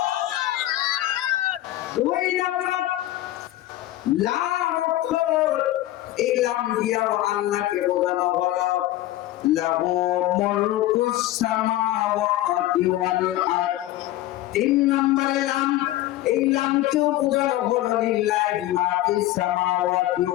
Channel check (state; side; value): quieter; right; 15.3 dB